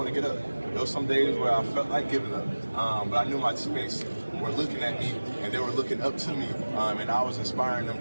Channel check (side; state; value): both; inverted; correlation -1.00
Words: to get up. There was some days where I felt like giving up, but I knew my teammates were looking at me and they were looking up to me, and I was inspiring them